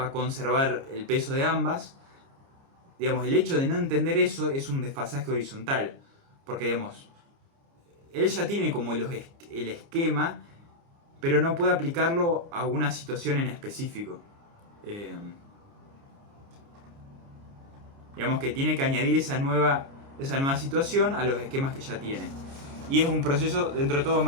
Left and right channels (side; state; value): left; late; 29 ms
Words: conservar el peso de ambas. Digamos, el hecho de no entender eso es un desfasaje horizontal, porque digamos, él ya tiene como el esquema, pero no puede aplicarlo a una situación en específico. Digamos que tiene que añadir esa nueva situación a los esquemas que ya tiene. Y es un proceso dentro de todo